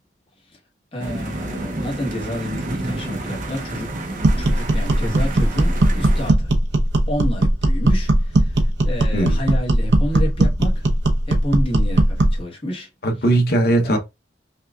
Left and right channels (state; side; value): normal; both; correlation 0.87